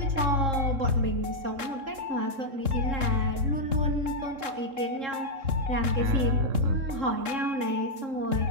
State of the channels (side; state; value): left; late; 3.7 ms